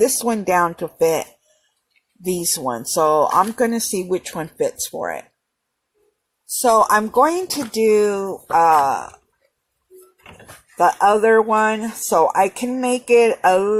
one down to fit these ones. So I'm going to see which one fits for it. So I'm going to do the other one so I can make it a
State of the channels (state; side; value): identical; both; correlation 1.00